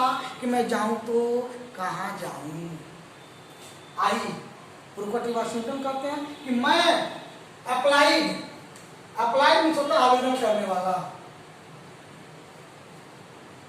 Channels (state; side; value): identical; both; correlation 1.00